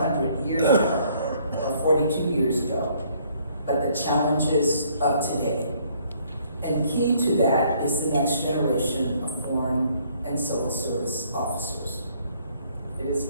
years ago, or 42 years ago, but the challenges of today. And key to that is the next generation of foreign and civil service officers. It is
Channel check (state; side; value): inverted; both; correlation -0.64